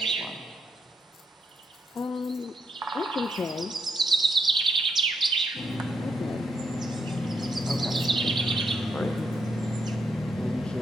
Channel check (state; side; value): normal; both; correlation 0.78